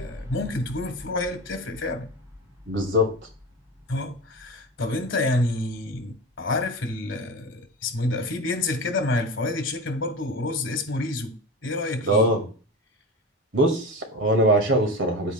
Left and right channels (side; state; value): both; normal; correlation 0.28